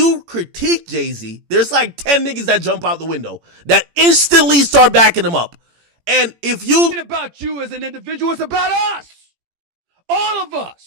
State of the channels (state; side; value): late; left; 18 ms